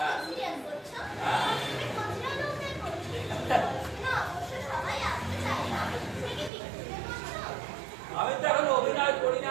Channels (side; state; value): left; drops out; at 6.5 s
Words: সিরিয়াস করছো? তুমি কচরা লোকদের করছো। না, অবশ্য সবাই আসতে চায় না। তুমি কি পিকনিকে করছো? আমি তো এখন অভিনয় করি না